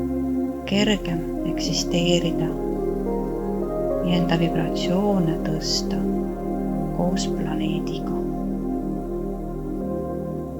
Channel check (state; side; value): identical; both; correlation 1.00